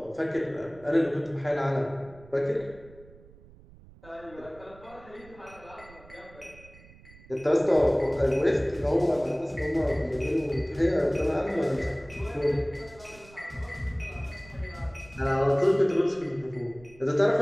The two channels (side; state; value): right; noise; rumble, 22 dB below the sound